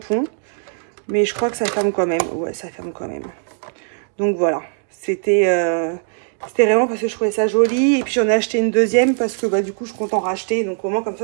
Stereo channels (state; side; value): silent; left; 66 dB below the other